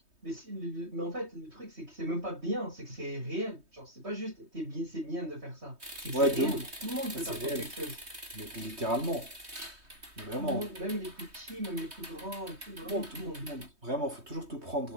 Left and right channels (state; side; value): late; left; 3.2 ms